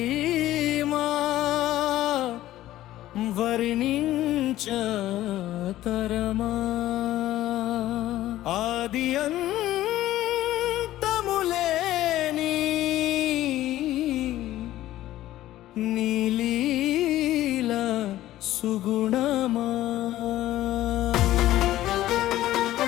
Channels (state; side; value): quieter; right; 14.6 dB